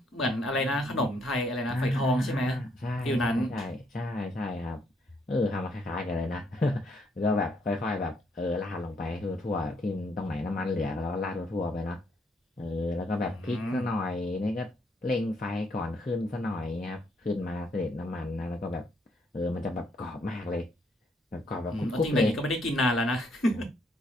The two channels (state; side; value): normal; both; correlation 0.71